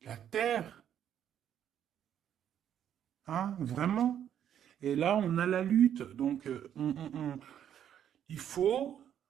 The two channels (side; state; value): left; quieter; 9.7 dB